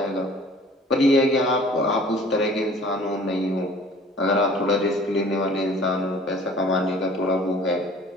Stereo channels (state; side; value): normal; both; correlation 0.50